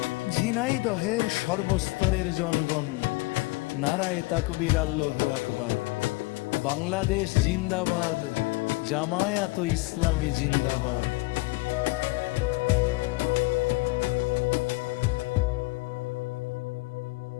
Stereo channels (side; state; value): right; quieter; 23.2 dB